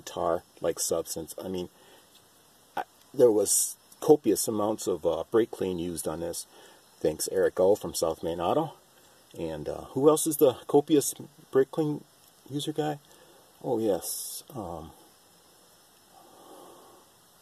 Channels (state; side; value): identical; both; correlation 1.00